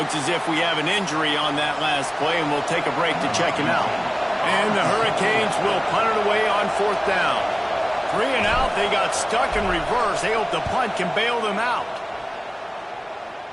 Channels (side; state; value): both; identical; correlation 1.00